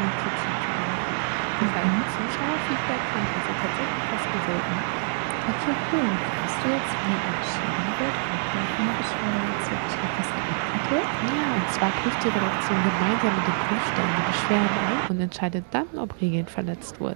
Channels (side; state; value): left; silent; digital silence